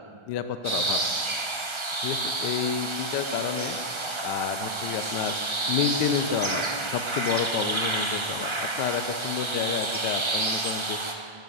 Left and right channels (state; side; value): late; left; 1.3 ms